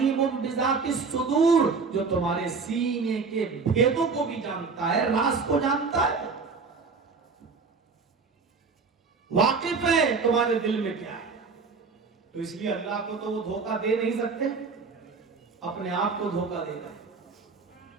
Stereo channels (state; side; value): quieter; left; 4.8 dB